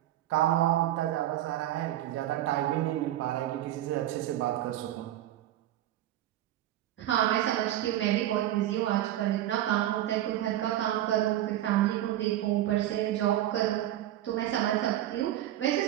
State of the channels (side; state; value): left; quieter; 13.3 dB